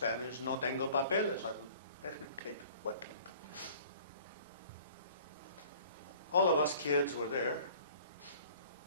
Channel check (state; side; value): inverted; both; correlation -0.50